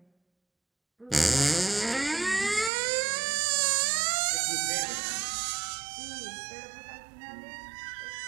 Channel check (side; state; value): left; drops out; at 2.7 s